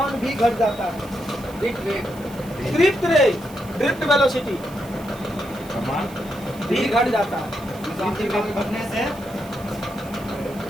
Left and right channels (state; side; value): noise; right; hiss, 21 dB below the sound